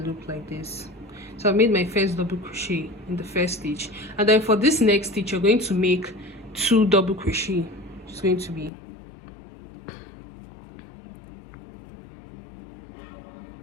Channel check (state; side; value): drops out; right; at 8.7 s